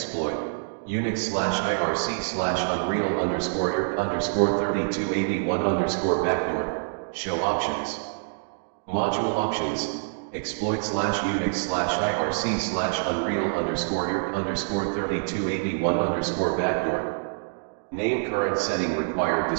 Unix/IRC/Unreal_3281_backdoor. Show options. Module options. Exploit/Unix/IRC/Unreal_3281_backdoor. Name current setting required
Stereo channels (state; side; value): silent; left; digital silence